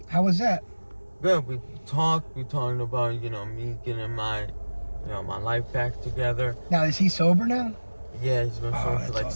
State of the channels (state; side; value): inverted; both; correlation -1.00